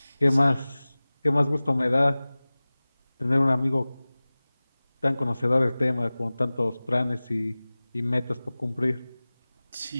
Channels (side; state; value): both; inverted; correlation -0.99